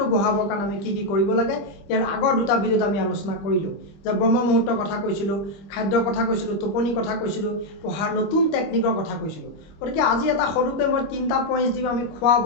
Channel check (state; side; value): late; right; 25 ms